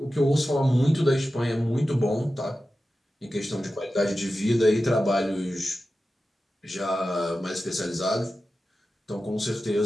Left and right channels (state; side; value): normal; both; correlation 0.93